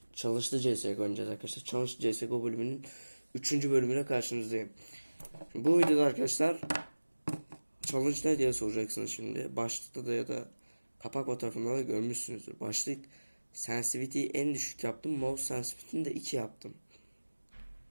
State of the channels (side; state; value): both; inverted; correlation -1.00